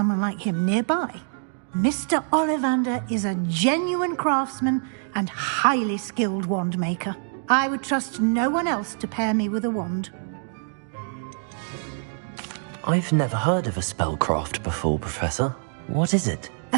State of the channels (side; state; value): left; silent; digital silence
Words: like him nearby. Mr. Ollivander is a genuine craftsman and highly skilled wand maker. I would trust no one else to pair me with a wand. I've never heard of a spellcraft before, Professor. What is it?